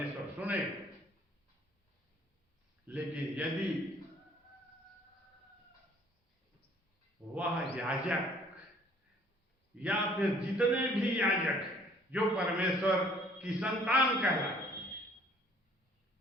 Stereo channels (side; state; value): both; normal; correlation 0.58